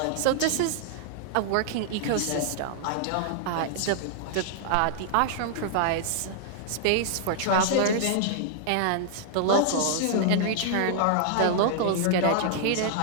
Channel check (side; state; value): both; different; correlation -0.01